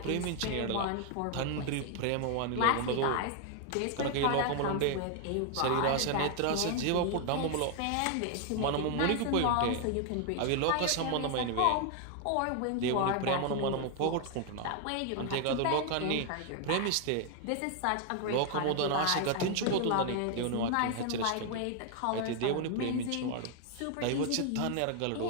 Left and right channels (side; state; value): both; different; correlation 0.00